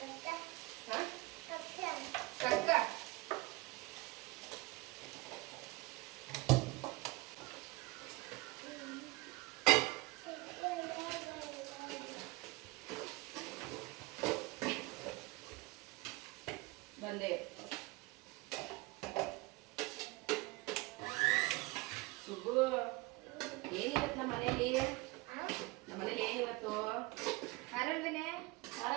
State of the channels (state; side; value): quieter; left; 23.1 dB